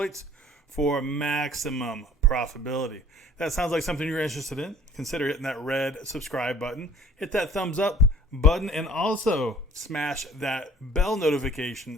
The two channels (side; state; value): both; normal; correlation 0.51